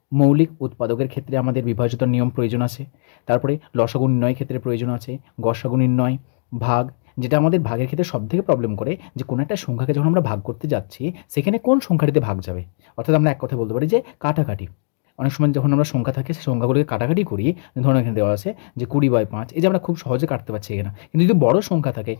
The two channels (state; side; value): silent; right; digital silence